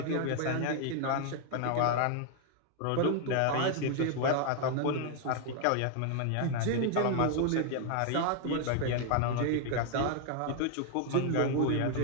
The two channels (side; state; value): both; different; correlation 0.00